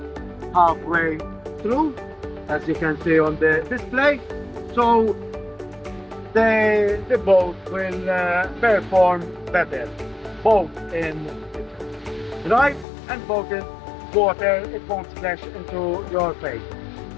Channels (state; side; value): drops out; right; at 12.9 s